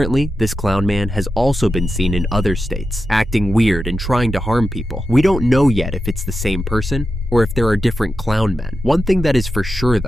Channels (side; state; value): both; normal; correlation 0.90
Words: this clown man has also been seen in other states, acting weird and trying to harm people. We don't know yet if it's the same person, or if there are different clown men. One thing that is for sure